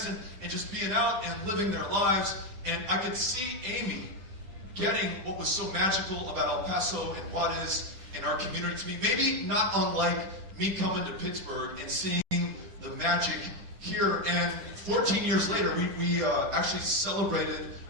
and just being out and living their lives. And I could see Amy getting what was so magical about El Paso and Juarez and our community to me. Maybe not unlike me coming to Pittsburgh and seeing the magic here. And 14 years later, we actually celebrated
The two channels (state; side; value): late; left; 10 ms